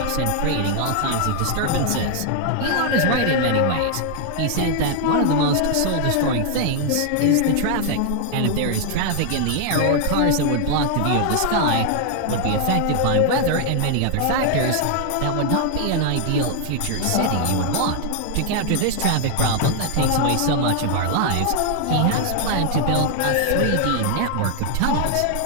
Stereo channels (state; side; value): different; both; correlation 0.00